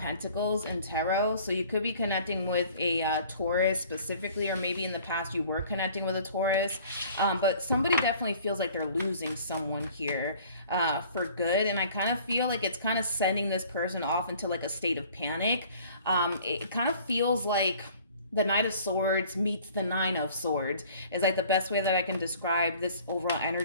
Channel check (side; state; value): both; inverted; correlation -0.51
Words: in tarot. So you could be connecting with a Taurus specifically, or maybe in the past you were connecting with a Taurus. But somebody definitely feels like they're losing someone here for good. And I kind of feel like it's kind of sending this person off into like a state of panic. It kind of feels like the Knight of Swords meets the Nine of Swords is like the best way that I can describe this overall